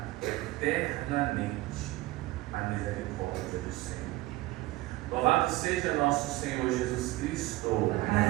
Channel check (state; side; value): quieter; left; 18.7 dB